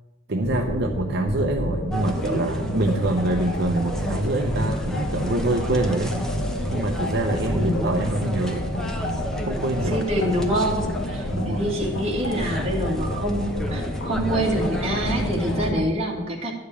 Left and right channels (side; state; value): both; normal; correlation 0.55